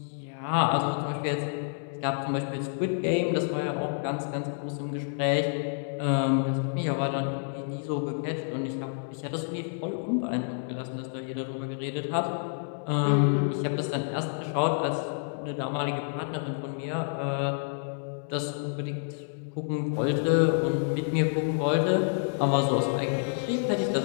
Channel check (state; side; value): silent; right; digital silence